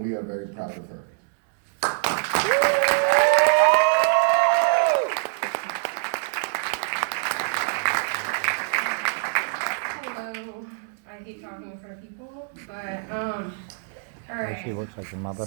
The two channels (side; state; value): left; silent; digital silence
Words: we are very proud of her. Hello. I hate talking in front of people, but all right. She looks like your mother.